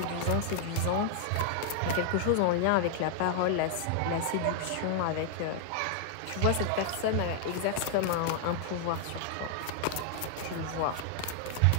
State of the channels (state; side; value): different; both; correlation 0.00